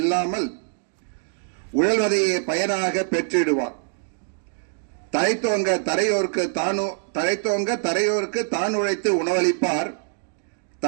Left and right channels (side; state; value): left; silent; digital silence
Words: உழல்வதையே பயனாக பெற்றிடுவார். தழைத்தோங்க தரையோருக்கு தான் உழைத்து